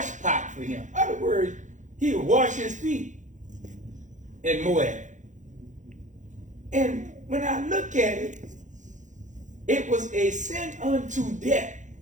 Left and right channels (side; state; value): left; late; 0.36 ms